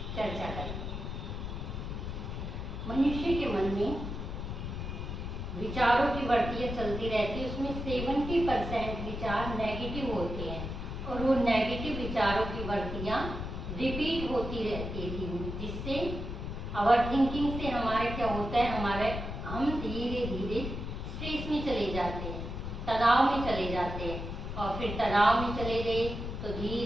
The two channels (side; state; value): left; noise; rumble, 5 dB below the sound